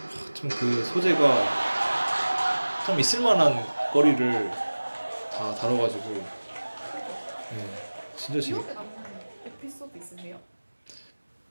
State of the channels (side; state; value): both; inverted; correlation -1.00